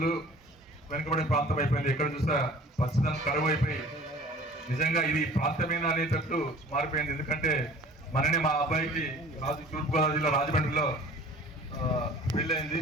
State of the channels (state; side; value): normal; both; correlation 0.47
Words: వెనుకబడిన ప్రాంతం అయిపోయింది. ఎక్కడ చూసా పచ్చదనం కరువు అయిపోయి నిజంగా ఇది ప్రాంతమేనా అనేటట్టు మారిపోయింది. ఎందుకంటే మననే మా అబ్బాయికి తూర్పుగోదావరి జిల్లా రాజమండ్రిలో పెళ్ళయింది.